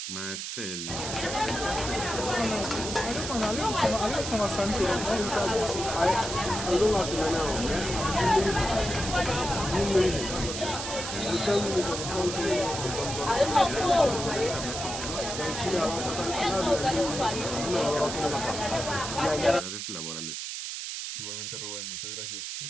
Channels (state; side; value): noise; right; hiss, 5 dB below the sound